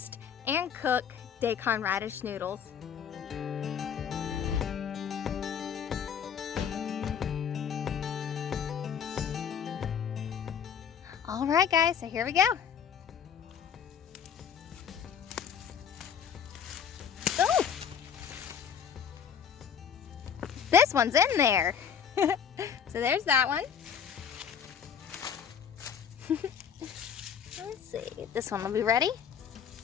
and cook daikon radish noodles. Alright guys, so here we go. Oh! This one's in there. So there's that one. Let's see, this one will be ready.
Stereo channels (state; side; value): quieter; right; 7.8 dB